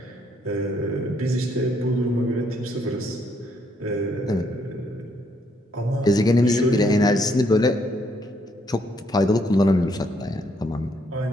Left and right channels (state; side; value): normal; both; correlation 0.71